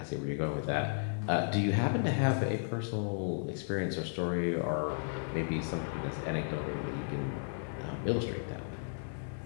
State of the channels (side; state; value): right; silent; digital silence